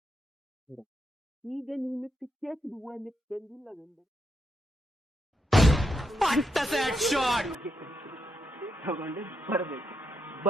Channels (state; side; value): normal; both; correlation 0.82